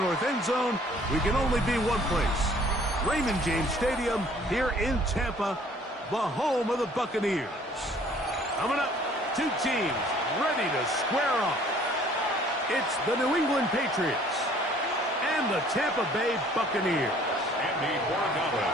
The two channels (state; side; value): normal; both; correlation 0.56